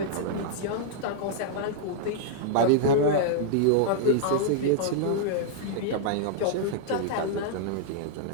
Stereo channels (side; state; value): both; different; correlation -0.01